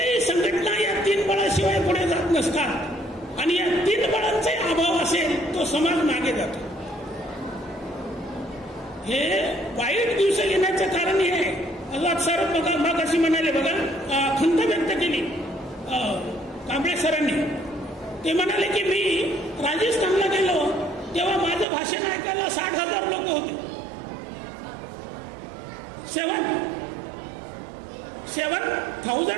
संघटना या 3 बळाशिवाय पुढे जात नसतात आणि या 3 बळांचाही अभाव असेल तो समाज मागे जातो. हे वाईट दिवस येण्याचं कारण हे आहे. आझाद सर मग अशी म्हणाले बघा, खंत व्यक्त केली कांबळे सरांनी. ते म्हणाले की मी राजस्थानला गेलो तेव्हा माझं भाषण ऐकायला 60,000 लोक होते.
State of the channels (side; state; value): left; drops out; at 21.7 s